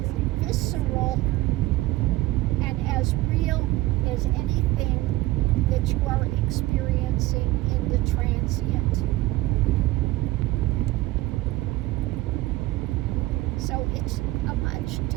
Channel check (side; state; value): left; quieter; 18.3 dB